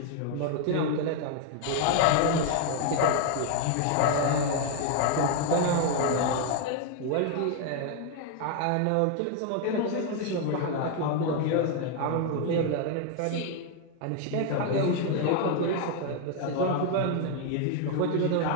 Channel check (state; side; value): different; both; correlation 0.00